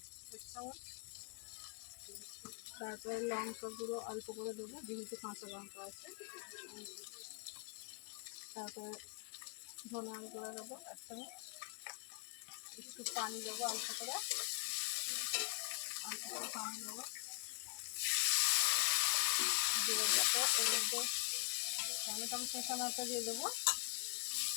1 চামচ, তারপরে লঙ্কা গুঁড়ো অল্প করে দেবো, যেহেতু কাঁচা লঙ্কা আছে। তারপরে ধনার গুঁড়ো দেবো 1 চামচ, একটু পানি দেবো অল্প করে পানি দেবো, দিয়ে দেবো এর মধ্যে টমেটো কষানোটা দিয়ে দেবো,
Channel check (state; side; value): quieter; right; 30.3 dB